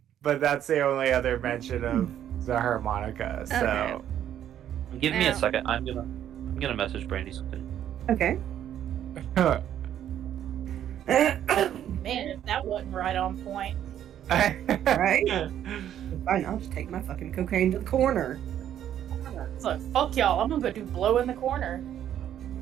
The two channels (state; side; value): quieter; left; 10.6 dB